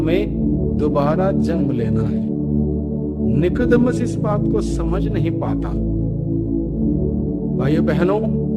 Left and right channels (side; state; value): both; identical; correlation 1.00